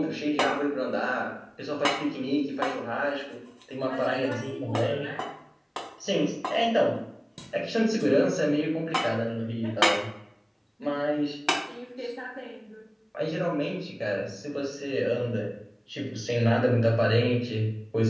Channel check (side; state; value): both; identical; correlation 1.00